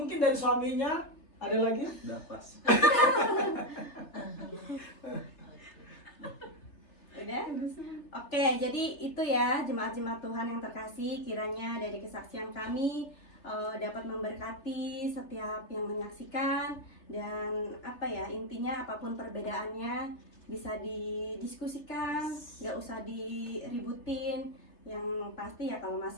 dari suaminya ada lagi? Udah pas. Udah? Oke, jadi itu ya jemaat-jemaat Tuhan yang terkasih, kiranya dari kesaksian kami dapat memberkati setiap yang menyaksikan, dan intinya apapun perbedaannya bisa didiskusikan, nggak usah diributin. Yang pasti ya kalau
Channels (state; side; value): late; right; 3.3 ms